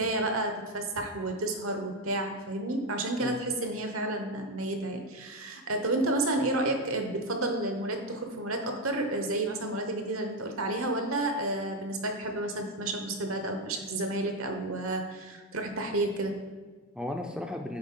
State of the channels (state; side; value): normal; both; correlation 0.09